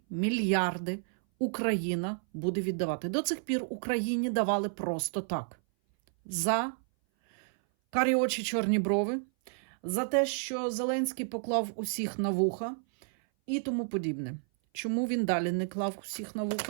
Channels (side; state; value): left; silent; 57 dB below the other